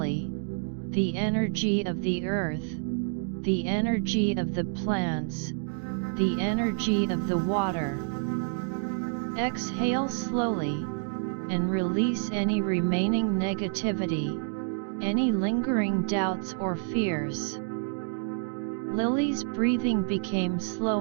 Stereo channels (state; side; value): silent; left; 59 dB below the other